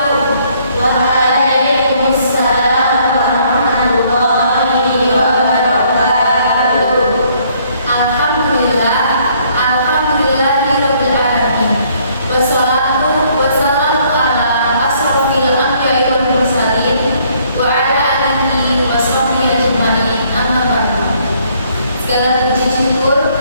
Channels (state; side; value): inverted; both; correlation -0.65